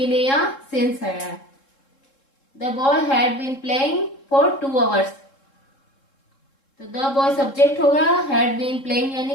लिए यहाँ सिंस है। The boy had been playing for 2 hours, तो द बॉय सब्जेक्ट हो गया, हैड बीन प्लेइंग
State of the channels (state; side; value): late; right; 3.7 ms